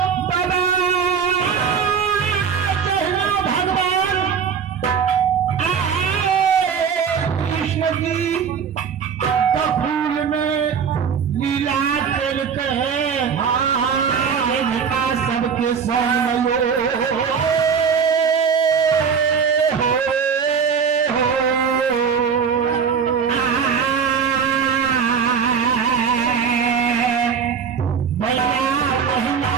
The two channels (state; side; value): quieter; left; 6.7 dB